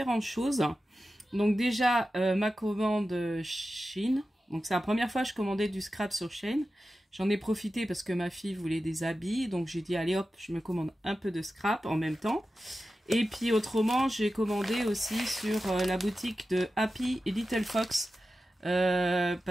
choses. Donc déjà, ma commande Shein. Donc c'est la première fois que je commandais du scrap sur Shein. J'en ai profité parce que ma fille voulait des habits. Donc j'ai dit, allez hop, je me commande un peu de scrap en même temps. Et puis autrement, j'ai commandé aussi sur la boutique de Happy et Little Fox.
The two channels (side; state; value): both; normal; correlation 0.93